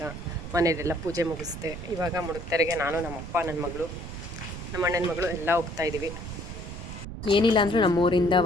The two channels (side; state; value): right; noise; rumble, 10 dB below the sound